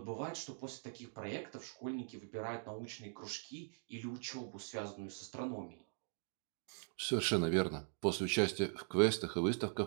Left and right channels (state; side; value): silent; left; digital silence